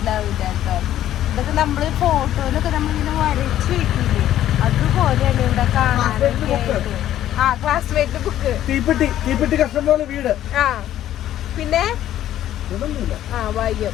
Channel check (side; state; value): right; quieter; 12.3 dB